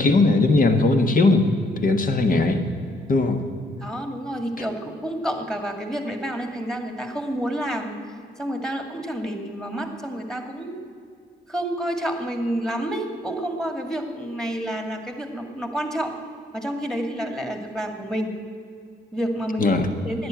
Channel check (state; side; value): normal; both; correlation 0.71